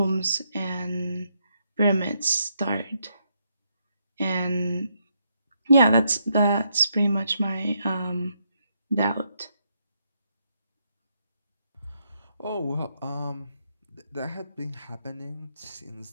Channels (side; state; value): both; inverted; correlation -0.78